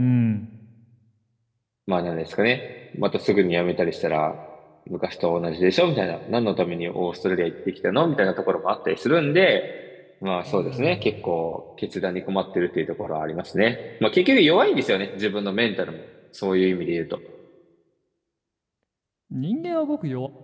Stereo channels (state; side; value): identical; both; correlation 1.00